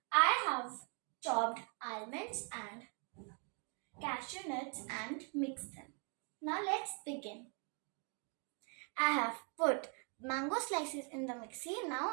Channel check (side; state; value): left; quieter; 39.3 dB